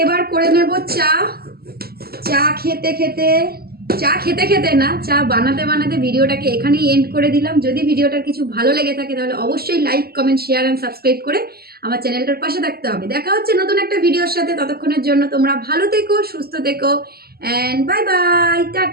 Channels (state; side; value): late; left; 0.45 ms